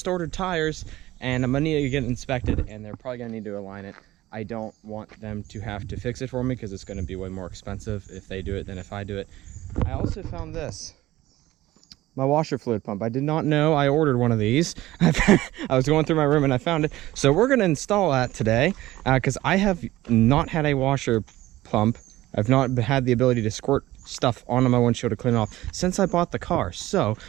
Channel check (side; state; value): left; quieter; 16.5 dB